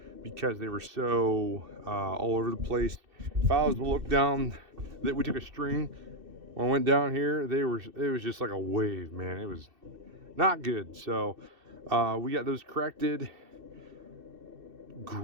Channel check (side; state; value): left; late; 2.7 ms